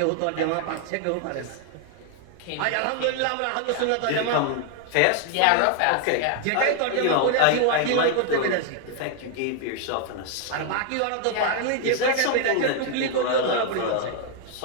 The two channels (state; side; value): different; both; correlation 0.00